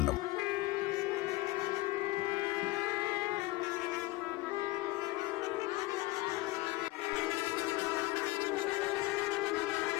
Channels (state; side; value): quieter; right; 20.2 dB